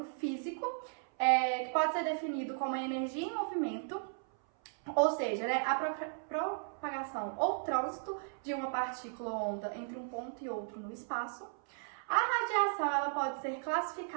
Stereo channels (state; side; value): silent; left; 54 dB below the other